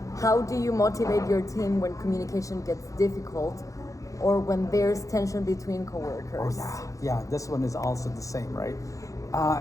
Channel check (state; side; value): late; right; 0.16 ms